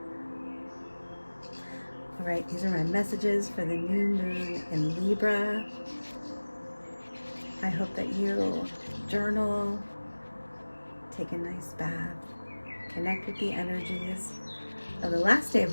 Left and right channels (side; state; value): both; inverted; correlation -1.00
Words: All right, these are my messages for the new moon in Libra. I hope that you journal, take a nice bath, connect with the energies of the last day